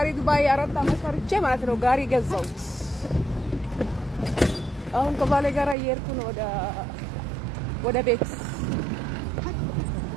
ዱባይ 4 አመት ፈርቼ ማለት ነው ጋሪ ገዛሁት። አሁን ከባሌ ጋር እየሄድኩ ነው ወደ ቤት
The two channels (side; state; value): left; drops out; at 5.8 s